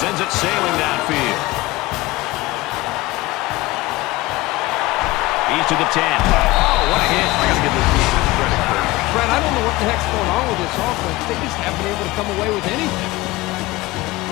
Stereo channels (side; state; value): right; quieter; 19.8 dB